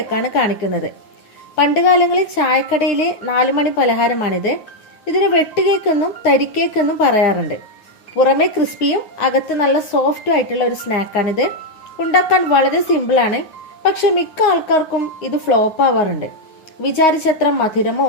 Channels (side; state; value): right; late; 9.5 ms